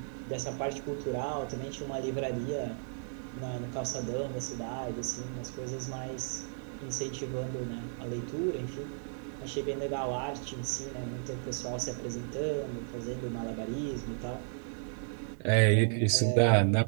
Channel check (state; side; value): silent; left; digital silence